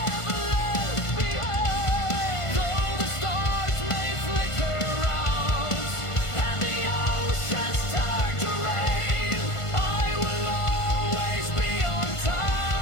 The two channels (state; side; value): late; right; 1.5 ms